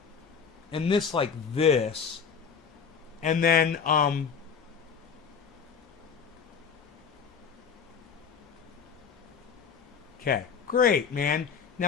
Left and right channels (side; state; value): right; quieter; 6.6 dB